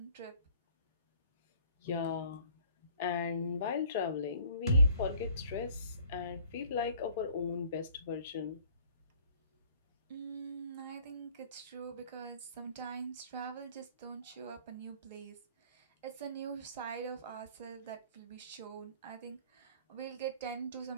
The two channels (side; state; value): both; inverted; correlation -0.56